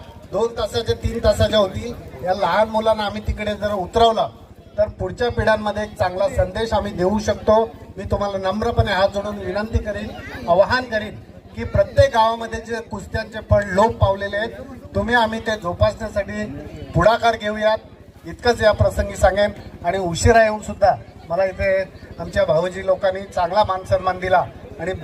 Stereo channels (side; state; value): both; identical; correlation 1.00